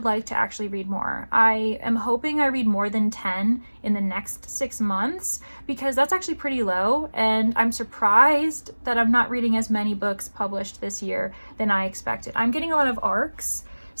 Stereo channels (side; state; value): both; inverted; correlation -1.00